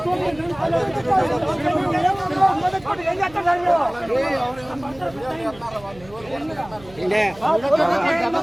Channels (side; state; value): right; noise; hum, 22 dB below the sound